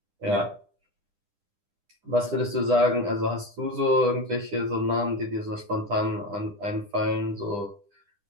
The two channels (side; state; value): left; late; 9.9 ms